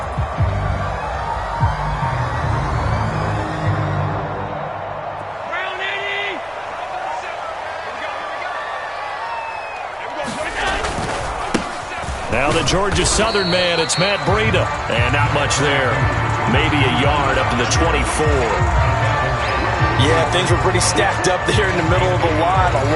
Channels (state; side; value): identical; both; correlation 1.00